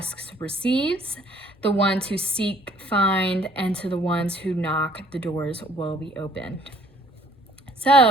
receives, the ones who seek find, and to the ones who knock, the doors will be opened."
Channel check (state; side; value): normal; both; correlation 0.59